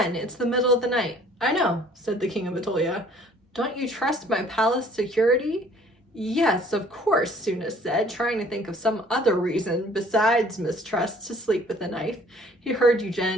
it's the middle of the night. I know, said the King of Atolia. Don't you trust my palace security? Yes, of course, Sophos said, trying to think of some other reason besides mistrust to sleep with a knife. He heard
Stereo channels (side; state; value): both; normal; correlation 0.55